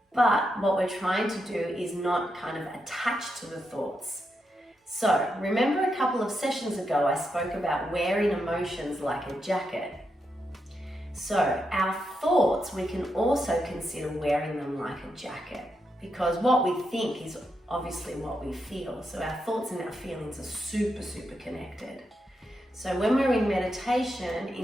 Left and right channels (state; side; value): normal; both; correlation 0.84